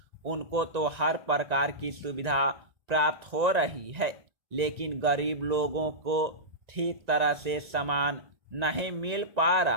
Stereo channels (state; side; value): late; left; 1.7 ms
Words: उनको तो हर प्रकार की सुविधा प्राप्त हो रही है, लेकिन गरीब लोगों को ठीक तरह से सामान नहीं मिल पा